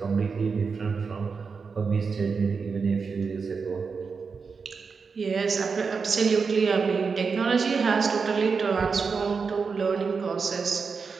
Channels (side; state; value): left; quieter; 5.2 dB